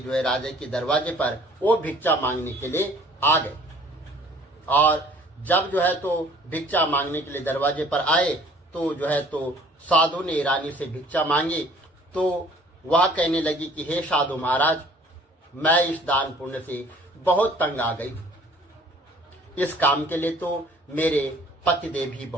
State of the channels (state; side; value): normal; both; correlation 0.54